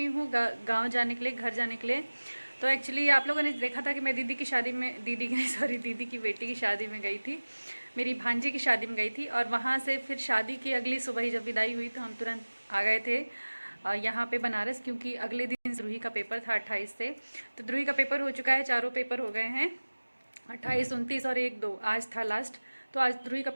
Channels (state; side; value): inverted; both; correlation -1.00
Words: हूँ गाँव जाने के लिए, घर जाने के लिए। तो एक्चुअली आप लोगों ने देखा था कि मैं दीदी की शादी में, दीदी की नहीं सॉरी, दीदी की बेटी की शादी में गई थी, मेरी भांजी की शादी में गई थी। और वहाँ से फिर शादी की अगली सुबह ही जब विदाई हुई तो हम तुरंत आ गए थे यहाँ पे बनारस, क्योंकि अगले दिन द्रुही का पेपर था 28 से। तो द्रुही का पेपर हो चुका है, चारों पेपर हो गए हैं, 28, 29 और 1, 2 आज था लास्ट। तो आज द्रुही का